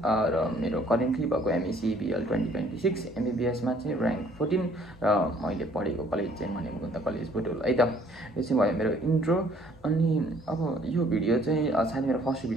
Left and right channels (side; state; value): both; normal; correlation 0.60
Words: र मेरो करेन्टली भएको एमएससी बिएल 2026 एमबिबिएसमा चाहिँ ऱ्याङ्क 14 र मैले पढेको कलेज चाहिँ मणिमुकुन्द कलेज बुटोल है त। यो चाहिँ भयो मेरो इन्ट्रो। अनि अब यो भिडियो चाहिँ सायद मेरो फर्स्ट